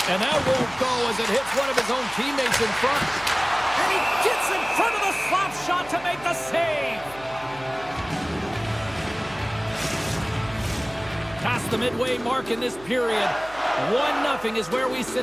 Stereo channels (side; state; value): right; noise; hum, 20 dB below the sound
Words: And that won't go as it hits one of his own teammates in front. And he gets in front of the slap shot to make the save. Past the midway mark in this period. 1-0 is where we